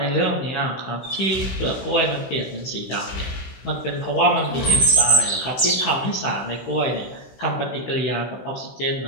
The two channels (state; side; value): late; right; 16 ms